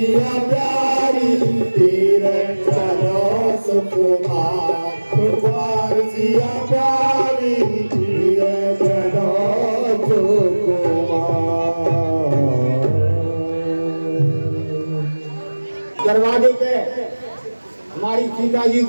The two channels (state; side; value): inverted; both; correlation -1.00